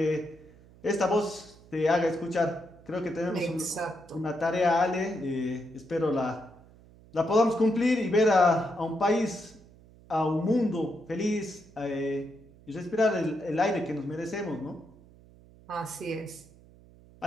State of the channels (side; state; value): right; noise; hum, 24 dB below the sound